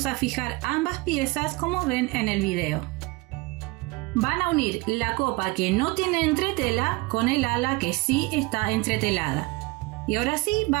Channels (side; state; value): left; quieter; 23.6 dB